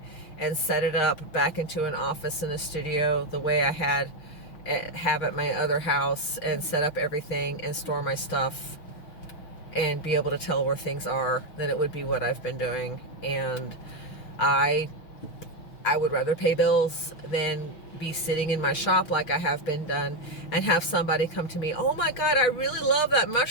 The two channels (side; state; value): right; late; 6.2 ms